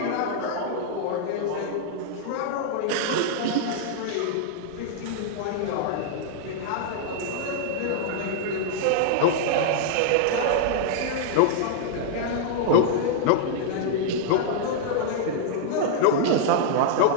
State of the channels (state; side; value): different; both; correlation -0.01